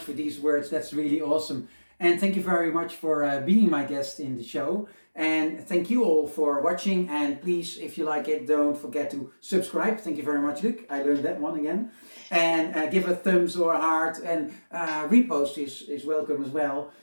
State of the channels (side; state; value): both; inverted; correlation -1.00